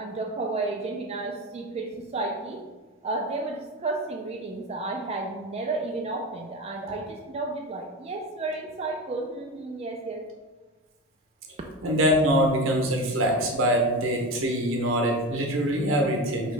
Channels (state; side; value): normal; both; correlation 0.24